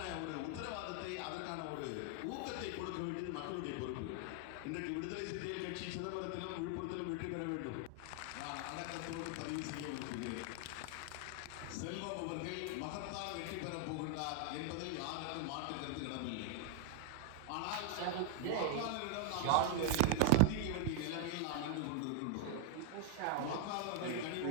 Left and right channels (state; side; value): different; both; correlation 0.00